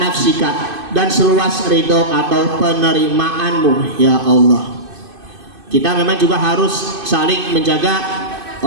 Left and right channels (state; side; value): late; left; 2.5 ms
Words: dan seluas ridho atau penerimaanmu ya Allah. Kita memang juga harus saling menjaga